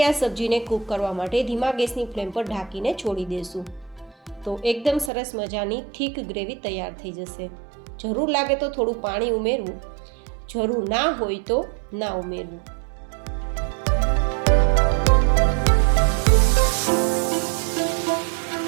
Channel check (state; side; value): drops out; left; at 5.1 s